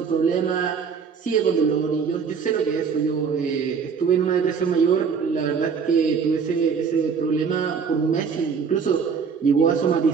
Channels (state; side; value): quieter; left; 6.1 dB